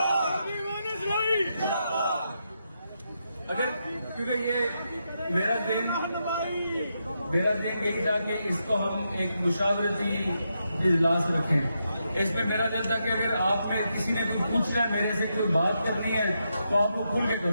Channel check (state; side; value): inverted; both; correlation -0.83